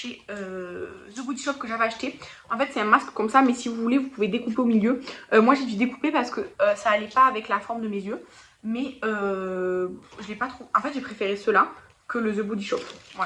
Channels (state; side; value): identical; both; correlation 1.00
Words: The Body Shop que j'avais acheté. En fait, c'est un masque comme ça, mais si vous voulez, vous pouvez découper au milieu. Moi, j'ai dû découper parce que ça allait pas avec la forme de mes yeux. Mais je l'ai pas trop. En fait, j'ai préféré ceux-là que le The Body Shop.